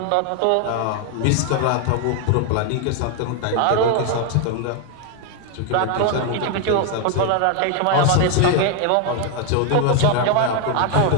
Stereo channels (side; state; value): both; different; correlation 0.01